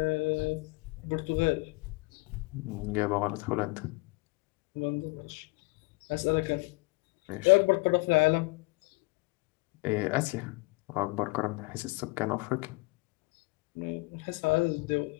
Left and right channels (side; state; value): right; quieter; 26.0 dB